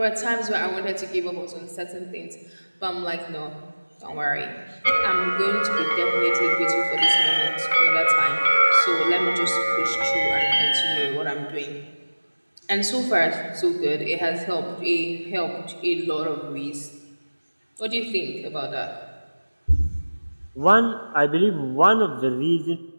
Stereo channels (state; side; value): inverted; both; correlation -1.00